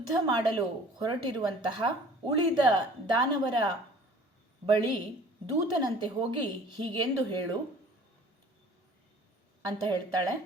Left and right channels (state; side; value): normal; both; correlation 0.49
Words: ಮಾಡಲು ಹೊರಟಿರುವಂತಹ ಉಳಿದ ದಾನವರ ಬಳಿ ದೂತನಂತೆ ಹೋಗಿ ಹೀಗೆಂದು ಹೇಳು ಅಂತ ಹೇಳ್ತಾಳೆ.